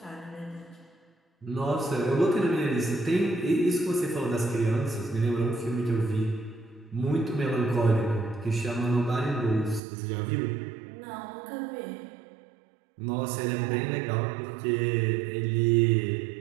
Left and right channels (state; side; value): drops out; left; at 9.8 s